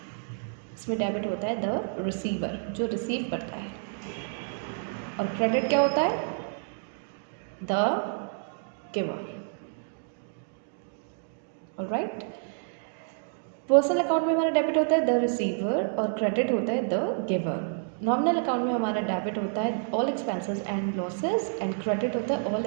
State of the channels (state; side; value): silent; left; digital silence